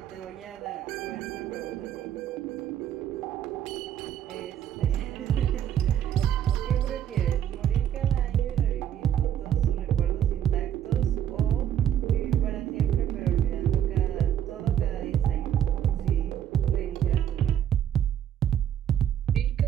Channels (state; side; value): quieter; left; 10.2 dB